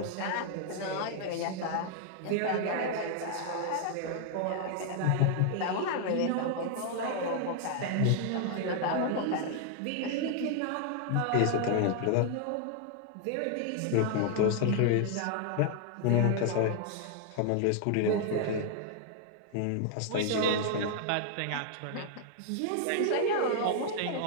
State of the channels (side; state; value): both; different; correlation 0.00